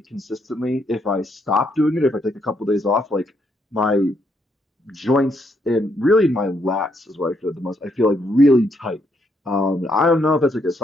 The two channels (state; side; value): normal; both; correlation 0.75